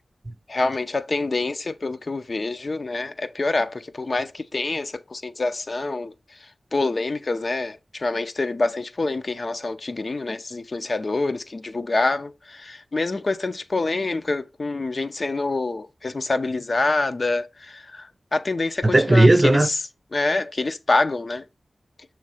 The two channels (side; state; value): both; normal; correlation 0.96